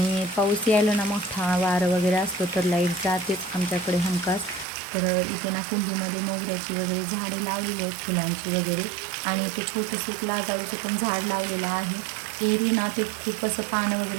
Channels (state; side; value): drops out; left; at 4.7 s